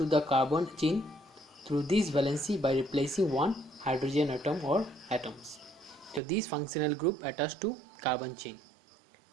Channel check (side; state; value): left; drops out; at 6.2 s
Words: the carbon chain through this valency by replacing one hydrogen atom or atoms. So this functional group attached to carbon chain.